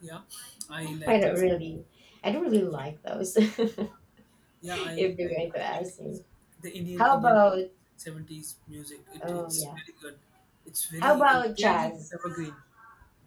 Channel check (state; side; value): identical; both; correlation 1.00